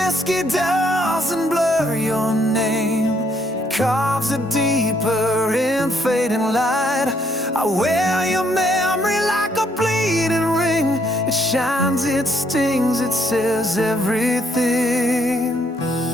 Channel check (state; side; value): normal; both; correlation 0.70